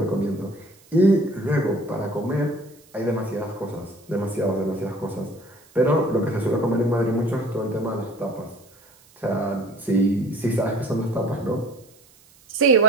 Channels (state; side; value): noise; right; hiss, 28 dB below the sound